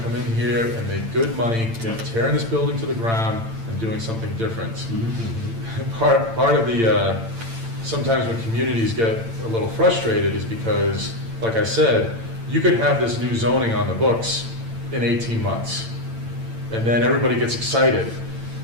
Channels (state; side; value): late; left; 8.9 ms